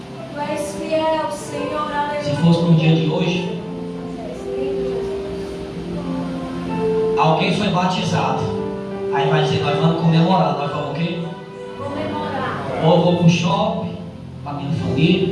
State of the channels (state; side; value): identical; both; correlation 1.00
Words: Tu és fiel, Senhor, aleluia. se fosse no dia de hoje, alguém foi batizado, aí vai dizer: nós vamos comemorar. Nós vamos o quê? Comemorar. Ou eu vou para o shopping com a minha